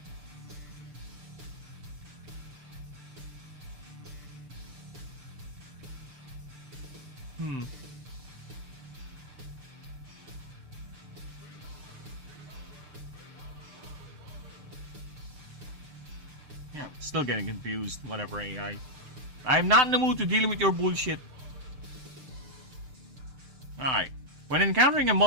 Yeah, still getting confused. Whatever, AI. I'm not in the mood to deal with your bullshit. Alright. When encountering a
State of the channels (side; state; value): left; late; 6.7 ms